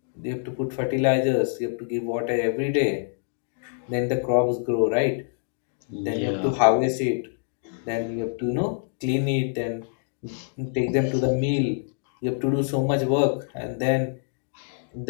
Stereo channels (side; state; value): right; silent; digital silence